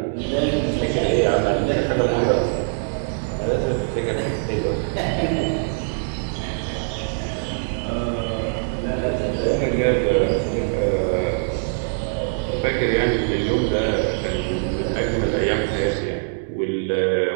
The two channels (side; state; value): left; silent; digital silence